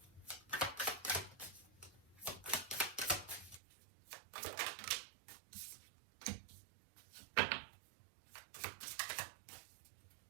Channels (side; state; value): left; drops out; at 3.6 s